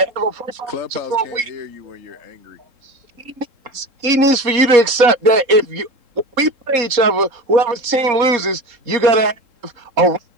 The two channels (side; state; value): left; late; 3.7 ms